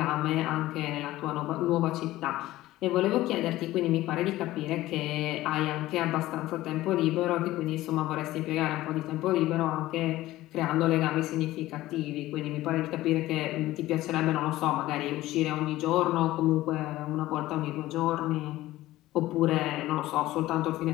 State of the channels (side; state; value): right; quieter; 16.3 dB